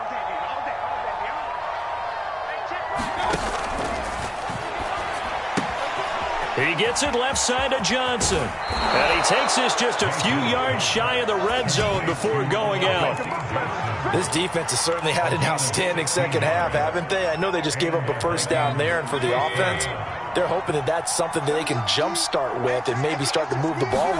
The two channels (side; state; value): both; identical; correlation 1.00